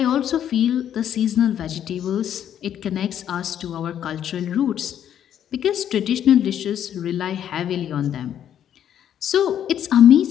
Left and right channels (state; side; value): quieter; right; 10.0 dB